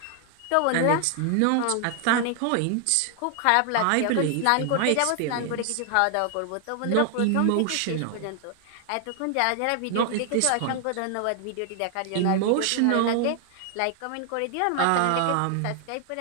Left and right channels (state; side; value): different; both; correlation 0.00